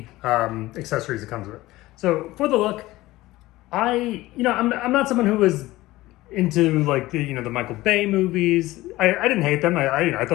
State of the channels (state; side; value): quieter; right; 18.0 dB